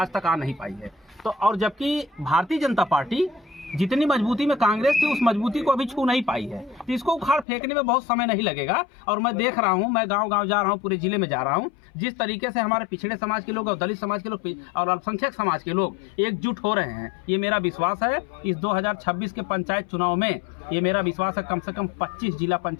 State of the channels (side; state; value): right; drops out; at 7.5 s